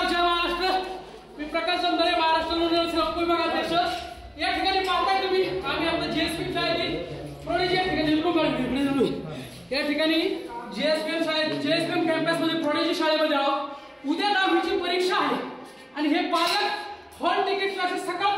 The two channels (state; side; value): identical; both; correlation 1.00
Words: जय महाराष्ट्र। मी प्रकाश चंदरे, महाराष्ट्र लोकसेवा विभागाध्यक्ष। या ठिकाणी पाहताय तुम्ही आम्ही आपल्या जेएसपी शाळेतील प्रोडेजी या ठिकाणी या ठिकाणी जेएसपीएम कॅम्पस मध्ये प्रोडेजी शाळेमध्ये आहोत। उद्या 10वीची परीक्षा आहे आणि हे पालक हॉल तिकीट क्लासेस